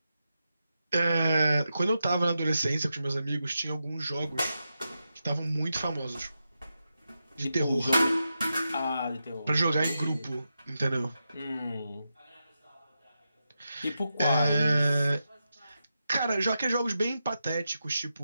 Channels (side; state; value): both; inverted; correlation -0.88